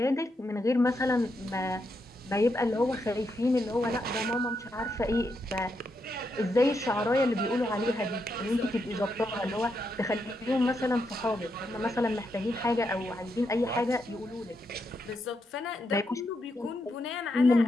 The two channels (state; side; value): normal; both; correlation 0.82